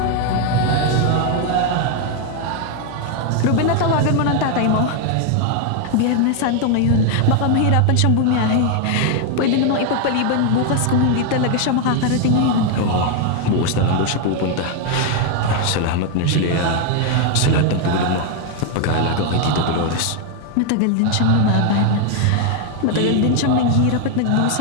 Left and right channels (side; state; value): both; different; correlation 0.01